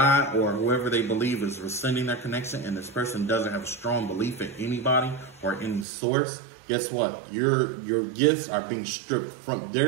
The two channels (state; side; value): drops out; left; at 5.9 s